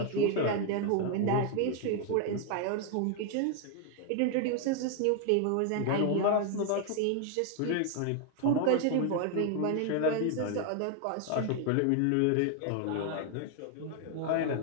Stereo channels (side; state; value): both; different; correlation 0.00